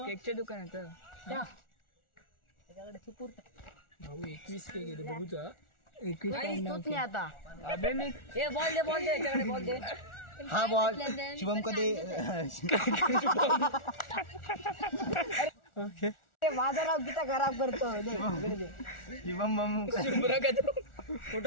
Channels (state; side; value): late; right; 1.4 ms